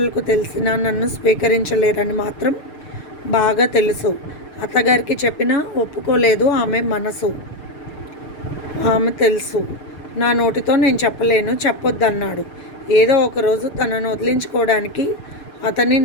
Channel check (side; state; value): right; late; 6.7 ms